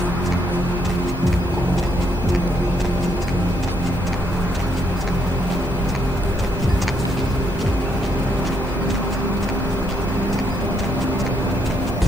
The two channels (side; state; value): both; normal; correlation 0.74